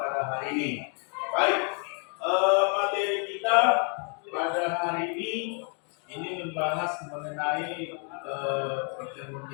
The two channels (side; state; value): right; quieter; 39.8 dB